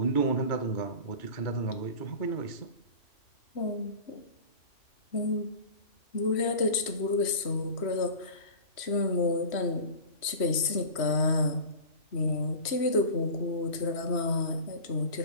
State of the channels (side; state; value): right; late; 3.1 ms